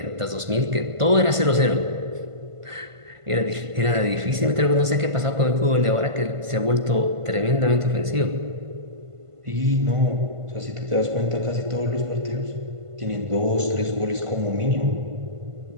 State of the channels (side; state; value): left; late; 1.5 ms